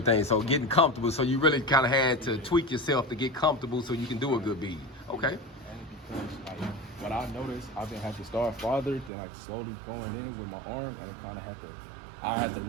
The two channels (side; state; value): left; drops out; at 9.1 s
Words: So getting comfortable. So you really kind of had to tweak yourself to get comfortable so you can do a good bead. Okay. And because like what I noticed, I've been had to start farther, then like slowly going in with my arm, and kind of I had to